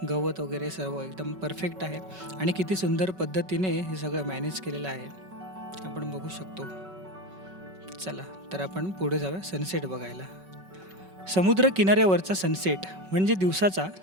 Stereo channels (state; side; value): late; left; 5.3 ms